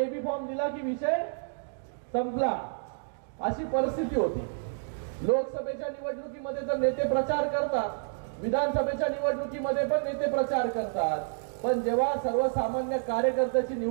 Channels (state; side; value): silent; left; digital silence